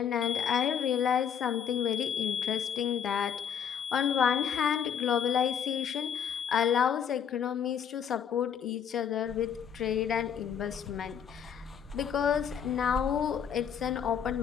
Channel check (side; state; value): right; quieter; 8.1 dB